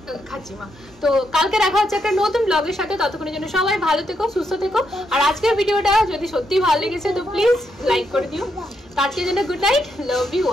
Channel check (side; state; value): both; normal; correlation 0.80